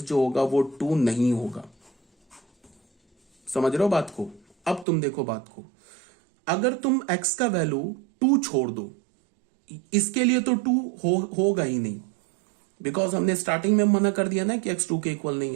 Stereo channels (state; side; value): drops out; left; at 4.9 s